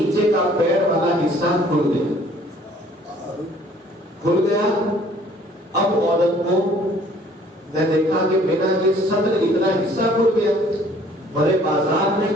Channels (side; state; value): both; normal; correlation 0.57